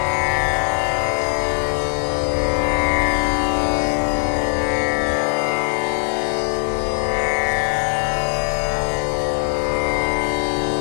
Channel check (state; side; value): silent; right; 66 dB below the other